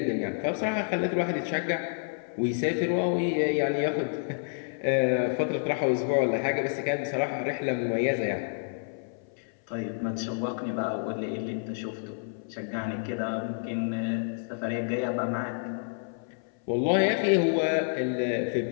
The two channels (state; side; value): silent; right; 59 dB below the other